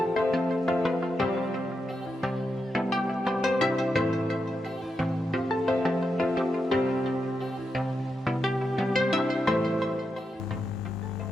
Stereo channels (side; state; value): both; normal; correlation 0.86